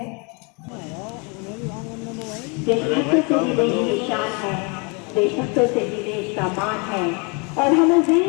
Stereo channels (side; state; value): right; quieter; 32.3 dB